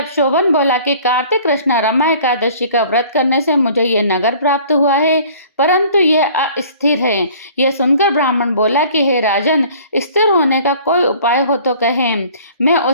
शोभन बोला कि कार्तिक कृष्ण रमा एकादशी का व्रत करने से मुझे ये नगर प्राप्त हुआ है, परंतु यह अस्थिर है। यह सुनकर ब्राह्मण बोला कि हे राजन, स्थिर होने का कोई उपाय हो तो कहें, मैं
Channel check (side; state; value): both; inverted; correlation -0.51